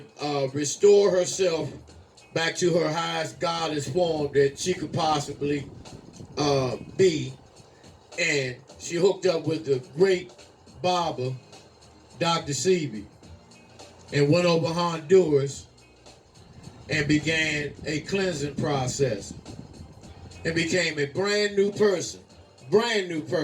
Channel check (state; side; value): identical; both; correlation 1.00